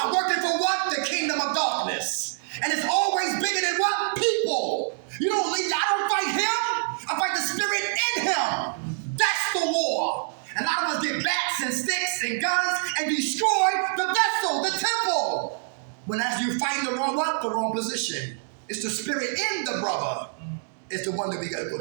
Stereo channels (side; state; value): left; silent; digital silence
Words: working for what? The kingdom of darkness. And it's always bigger than what? People. You don't leave, I don't fight him. I fight the spirit in him. That's the war. And a lot of us get bats and sticks and guns and destroy the vessel, the temple. When as you fight the wrong what? The wrong position. It's the spirit in the brother. It's the one that we gotta go